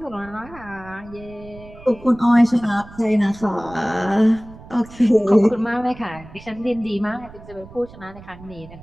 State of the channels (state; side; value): noise; right; rumble, 19 dB below the sound